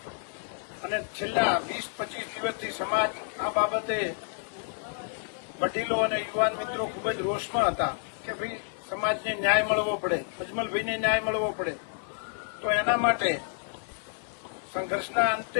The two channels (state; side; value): silent; right; 58 dB below the other